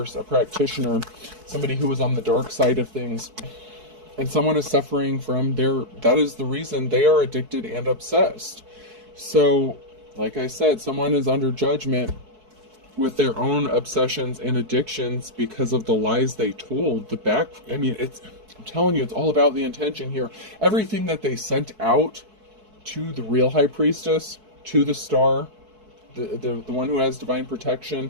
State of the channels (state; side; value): late; left; 4.6 ms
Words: a practitioner, somebody who was on the dark side of things. And someone is suffering from that is the reason they are addicted and obsessed. So, like I said, someone is under judgment with their own obsessions and addictions because of the lies they told. I'm telling you, it's all about the intention here. Everything that they sent out to the real high priestess, to the star, the one who has divine protection,